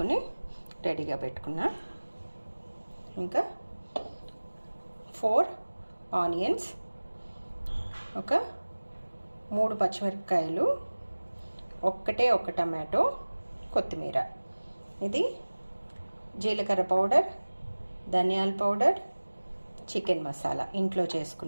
రెడీగా పెట్టుకున్నా. ఇంకా 4 ఆనియన్స్, ఒక 3 పచ్చిమిరపకాయలు, ఒక టమాటో, కొత్తిమీర. ఇది జీలకర్ర పౌడర్, ధనియాల పౌడర్, చికెన్ మసాలా ఇంట్లో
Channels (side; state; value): both; inverted; correlation -1.00